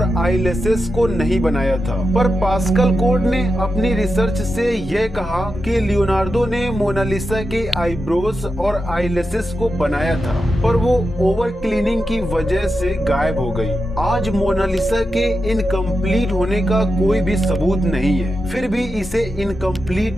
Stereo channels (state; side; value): normal; both; correlation 0.89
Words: आईलैशेस को नहीं बनाया था, पर पास्कल कोड ने अपनी रिसर्च से यह कहा कि लियोनार्डो ने मोनालिसा के आईब्रोज और आईलैशेस को बनाया था, पर वो ओवर क्लीनिंग की वजह से गायब हो गई। आज मोनालिसा के इनकम्प्लीट होने का कोई भी सबूत नहीं है, फिर भी इसे